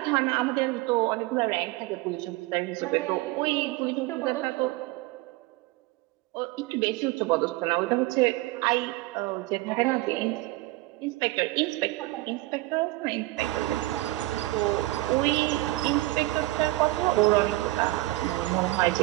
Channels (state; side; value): quieter; left; 19.5 dB